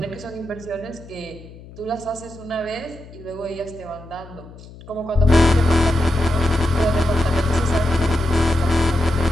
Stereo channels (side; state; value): left; noise; hum, 19 dB below the sound